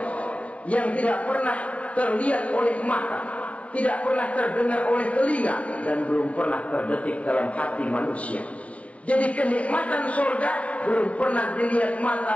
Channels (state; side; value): late; right; 0.065 ms